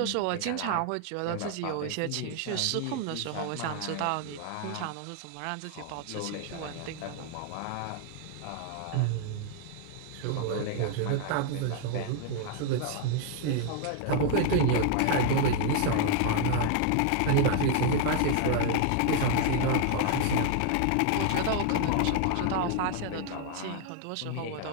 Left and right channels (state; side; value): different; both; correlation 0.00